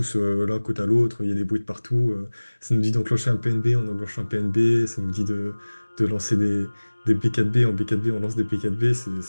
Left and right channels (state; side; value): inverted; both; correlation -1.00